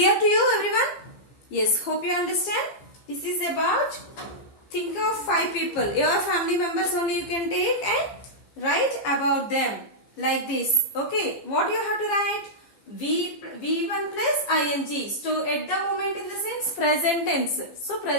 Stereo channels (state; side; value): late; right; 15 ms